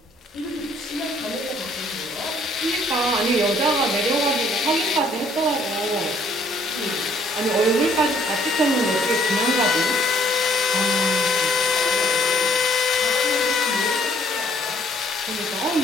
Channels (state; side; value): normal; both; correlation 0.62